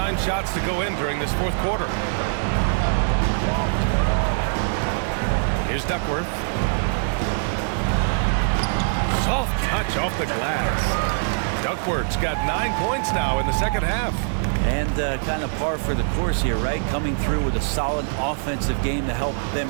shots to go in during this fourth quarter. Here's Duckworth. Soft touch off the glass. Duckworth's got 9 points now in the second half. And kind of par for the course here, right? Coming through with a solid offensive game to help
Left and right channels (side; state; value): left; silent; 63 dB below the other